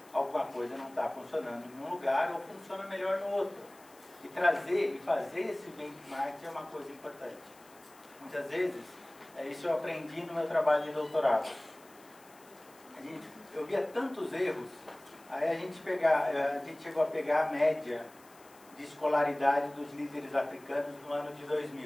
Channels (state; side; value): noise; left; hiss, 25 dB below the sound